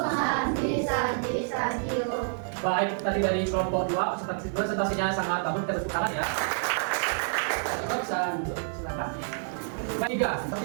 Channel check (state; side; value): silent; left; digital silence